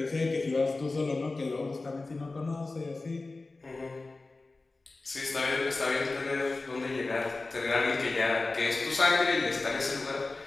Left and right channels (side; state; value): right; quieter; 3.4 dB